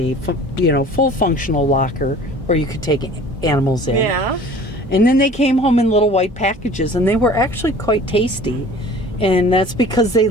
full functional locker where you could take animals in. Yeah. And then they came home in little white packages, and they were actually quite tasty. And that's because they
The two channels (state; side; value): normal; both; correlation 0.47